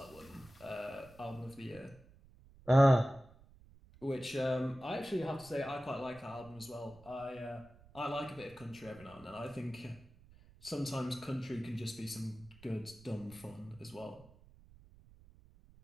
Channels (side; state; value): right; noise; rumble, 23 dB below the sound